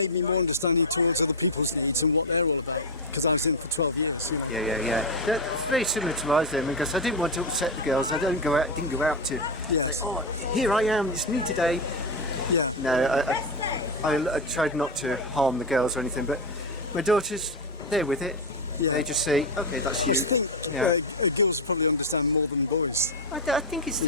me more understanding towards other people's needs and what they're all about, because I was in for 12 years, you know. Yeah. That's very similar to ours then, because I didn't want to upset the girls. I didn't go out to Yes. say, oh, here I am, it's me today. Yeah. No, I tried not to harm the girls or anything, but my daughters, they're with it. Yeah. They just say, okay, that's you. I think girls probably understand more than boys. I think it's the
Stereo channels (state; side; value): normal; both; correlation 0.08